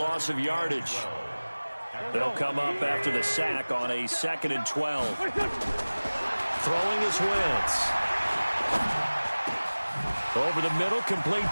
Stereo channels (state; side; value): inverted; both; correlation -1.00